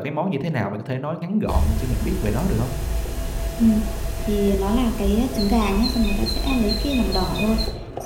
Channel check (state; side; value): identical; both; correlation 1.00